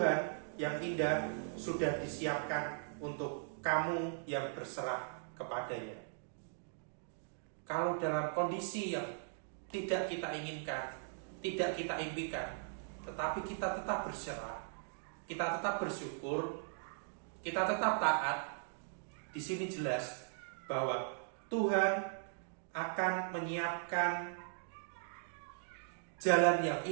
yang indah sudah disiapkan untuk kamu yang berserah kepadanya. Kalau dalam kondisi yang tidak kita inginkan, tidak kita impikan, tetapi kita tetap berserah, kita tetap bersyukur, kita tetap taat, di sini jelas bahwa Tuhan akan menyiapkan jalan yang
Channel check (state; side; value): silent; left; digital silence